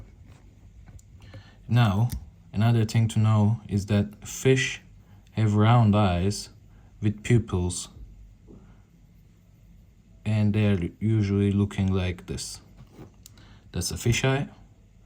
Now, another thing to know is that fish have round eyes with pupils, and they're usually looking like this. That's a fish eye.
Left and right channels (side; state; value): both; identical; correlation 1.00